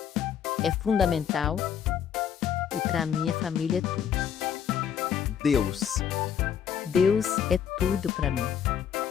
É fundamental e para mim a família é tudo. Deus. Deus é tudo para mim.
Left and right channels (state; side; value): quieter; right; 8.4 dB